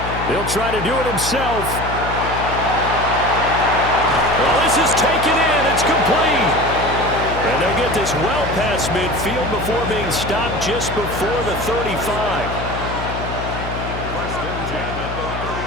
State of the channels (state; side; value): noise; left; hum, 7 dB below the sound